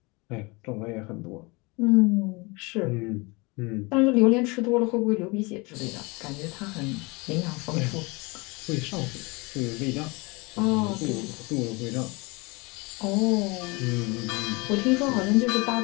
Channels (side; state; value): right; quieter; 26.7 dB